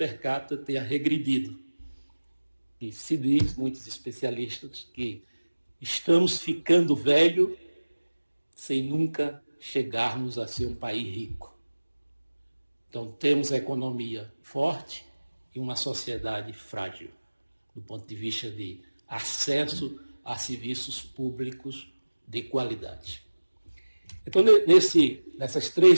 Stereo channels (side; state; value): both; inverted; correlation -1.00